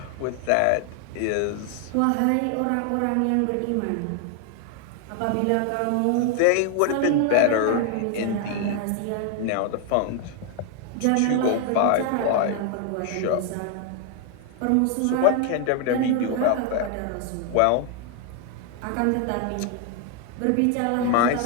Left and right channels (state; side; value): different; both; correlation 0.00